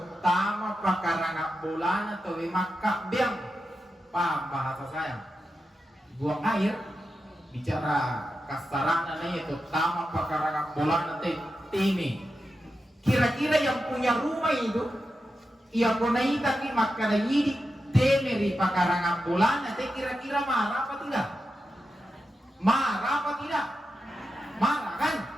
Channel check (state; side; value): normal; both; correlation 0.89